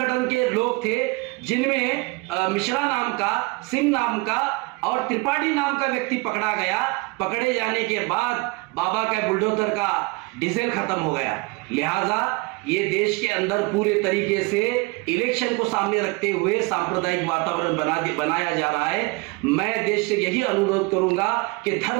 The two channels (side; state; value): left; quieter; 26.6 dB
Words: के लोग थे, जिनमें मिश्रा नाम का, सिंह नाम का और त्रिपाठी नाम का व्यक्ति पकड़ा गया। पकड़े जाने के बाद बाबा का बुलडोजर का डीजल खत्म हो गया। लिहाजा ये देश के अंदर पूरे तरीके से इलेक्शन को सामने रखते हुए सांप्रदायिक वातावरण बनाया जा रहा है। मैं देश से यही अनुरोध करूंगा कि